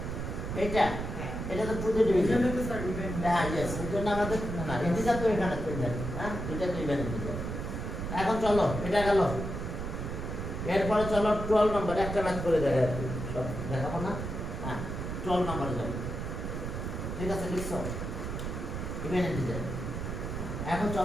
এইটা হ্যাঁ, এটা তো টু তে ডিভিশন। এটা তো স্যার ইভেন। হ্যাঁ, ইয়েস, এটা না আমাদের না ইন্টিজার তো এখানে তো ইভেন। হ্যাঁ, দুইটা তো ইভেন ইন্টিজার। এখন চলো, এটা গেল। এরপরে চলো 12 নম্বর, একটা ম্যাথ করে দেখা আর কি, সব দেখাবো না। হ্যাঁ, 12 নম্বরে যাও। ঠিক আছে, লিখছো ইভেন ইন্টিজার। এখন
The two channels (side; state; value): right; noise; rumble, 5 dB below the sound